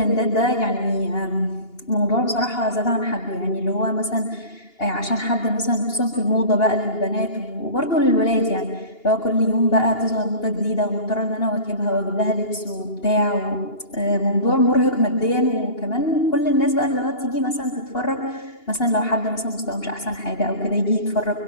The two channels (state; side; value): late; right; 2.8 ms